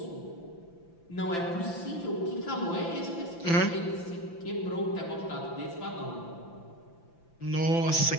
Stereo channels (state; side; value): late; right; 5.9 ms